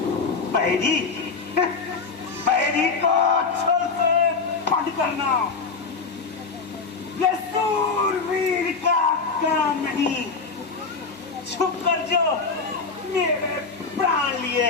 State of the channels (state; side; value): quieter; right; 4.6 dB